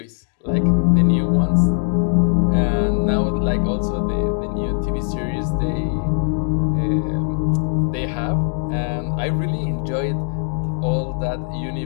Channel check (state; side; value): silent; right; 57 dB below the other